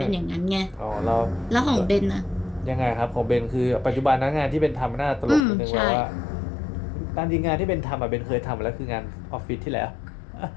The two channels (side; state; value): right; drops out; at 5.5 s